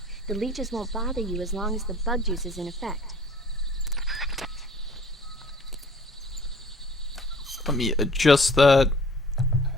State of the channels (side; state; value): both; normal; correlation 0.51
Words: the leeches won't bother you as long as the bug juice is in effect. Let me adjust that.